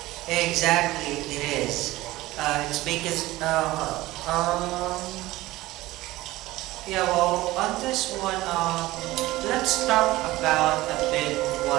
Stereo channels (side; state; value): left; quieter; 17.9 dB